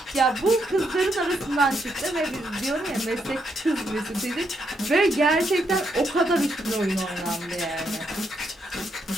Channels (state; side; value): normal; both; correlation 0.78